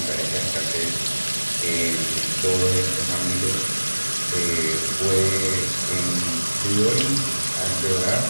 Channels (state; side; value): inverted; both; correlation -1.00